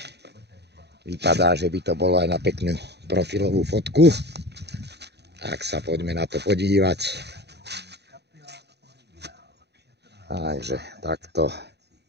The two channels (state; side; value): late; left; 0.49 ms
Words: Vypadá, že by to bolo aj na peknú profilovú fotku. Tak sa poďme na to podívať. Takže takto.